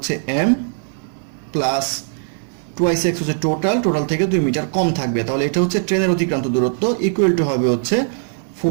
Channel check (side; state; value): left; silent; digital silence